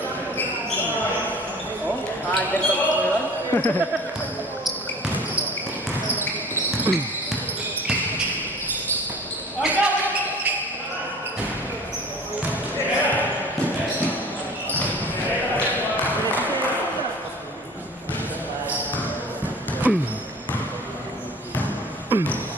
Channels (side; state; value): both; normal; correlation 0.44